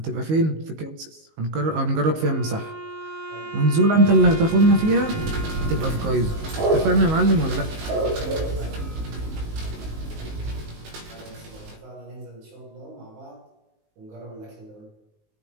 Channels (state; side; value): late; left; 19 ms